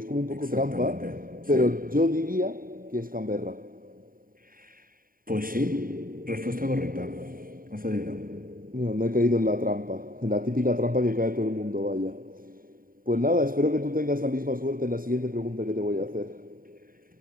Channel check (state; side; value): late; left; 0.41 ms